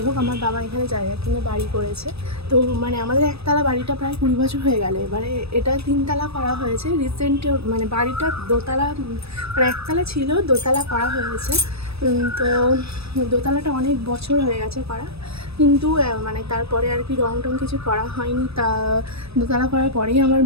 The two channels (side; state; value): left; late; 0.78 ms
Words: হোক, আমার বাবা এখানে জায়গা কিনে বাড়ি করেছে। তো মানে আমাদের একতলা বাড়িটা প্রায় 20 বছর হয়ে গেল, এবারে এটা 3 তলা করা হয়েছে রিসেন্ট। মানে বাড়িটা দোতলা, মানে একতলা ছিল, দোতলা করা হয়েছে। তো দোতলাটা অনেক বছর হয়ে গেছে করা, কিন্তু মানে তারপরে আর কি রং টং কিছু করা হয়নি। তা দোতলা করার পরেই আমার